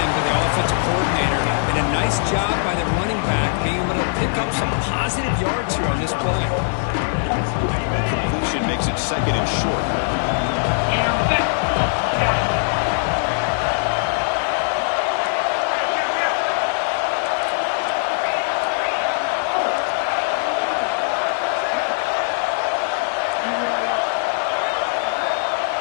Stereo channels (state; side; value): silent; right; digital silence